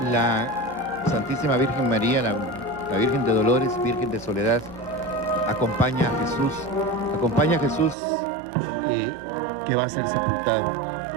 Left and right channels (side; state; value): left; drops out; at 8.0 s